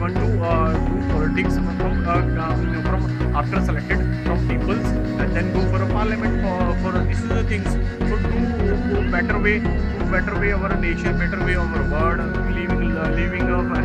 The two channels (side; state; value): both; identical; correlation 1.00